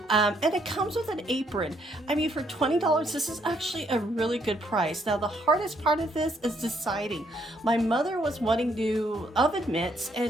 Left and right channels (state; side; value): normal; both; correlation 0.71